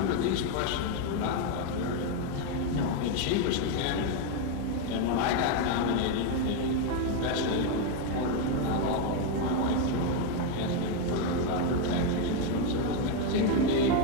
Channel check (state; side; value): different; both; correlation 0.01